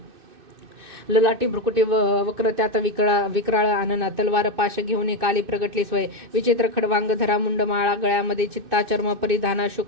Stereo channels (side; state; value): left; late; 2.6 ms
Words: ललाटी भ्रुकुटी वक्र त्यात विक्राळ आनना. तलवार पाश घेऊन काली प्रगटली स्वय. विचित्र खडवांग धरा मुंड माळा. गळ्यामध्ये चित्ता चर्म परिधाना.